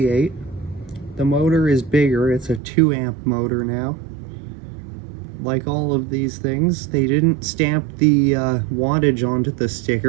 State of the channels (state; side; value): drops out; left; at 2.6 s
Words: The motor is bigger, it's a 2 amp motor now. Like all of these things, they didn't stamp the wattage onto the